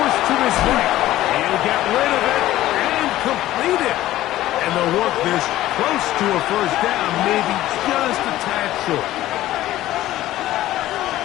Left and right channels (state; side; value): quieter; right; 14.8 dB